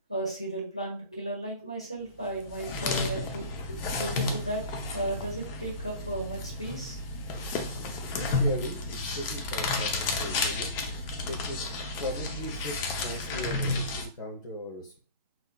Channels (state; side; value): inverted; both; correlation -0.36